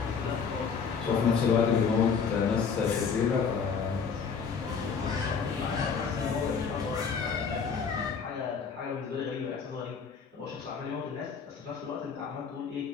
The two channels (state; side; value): quieter; right; 5.9 dB